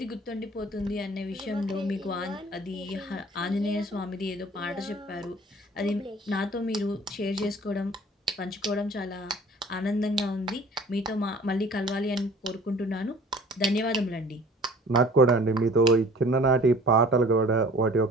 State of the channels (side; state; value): both; normal; correlation 0.48